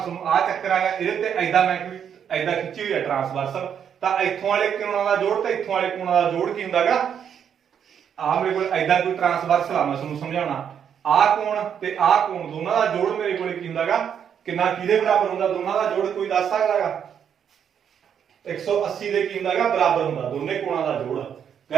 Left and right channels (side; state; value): left; quieter; 8.2 dB